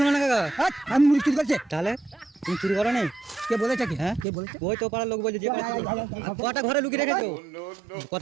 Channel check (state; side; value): drops out; left; at 4.2 s